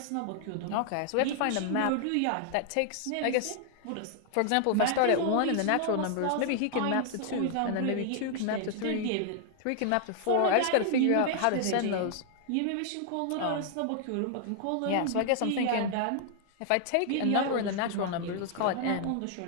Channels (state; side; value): different; both; correlation 0.00